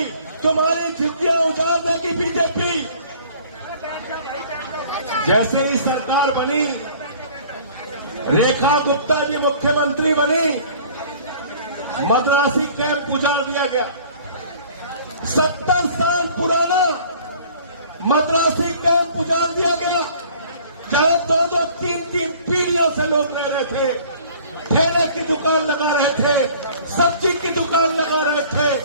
तुम्हारी झुग्गियां उजाड़ देगी बीजेपी। जैसे ही सरकार बनी, रेखा गुप्ता जी मुख्यमंत्री बनी, मद्रासी कैंप उजाड़ दिया गया। 70 साल पुराना मद्रासी कैंप उजाड़ दिया गया, जहां 2-2, 3-3 पीढ़ियों से लोग रह रहे थे, ठेले की दुकान लगा रहे थे, सब्जी की दुकान लगा रहे थे।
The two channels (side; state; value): both; inverted; correlation -0.50